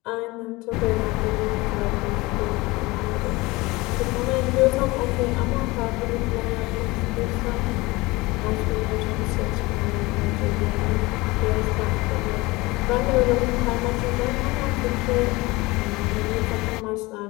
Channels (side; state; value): right; quieter; 22.2 dB